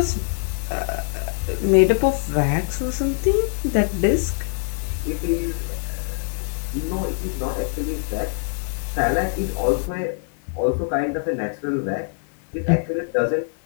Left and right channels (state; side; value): silent; right; digital silence